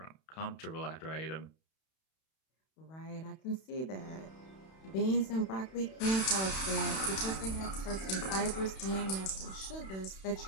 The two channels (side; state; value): right; late; 31 ms